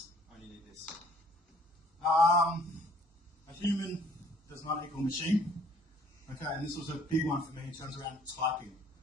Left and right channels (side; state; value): both; normal; correlation 0.58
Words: only need this. A human does not equal machine. Okay, and this was a big one for me in terms around typing.